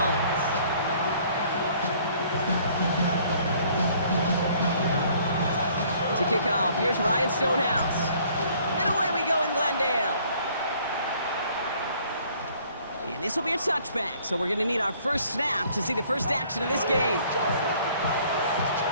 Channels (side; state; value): both; inverted; correlation -0.59